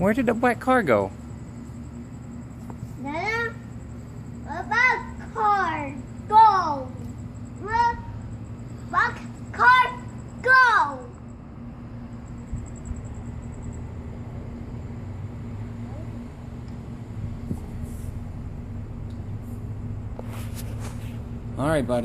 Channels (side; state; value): both; identical; correlation 1.00